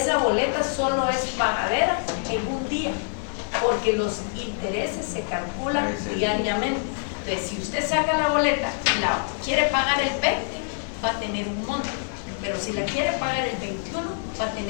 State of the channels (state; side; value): silent; right; digital silence